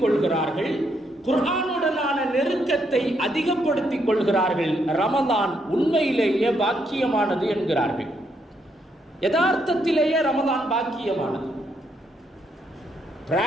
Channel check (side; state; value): both; normal; correlation 0.75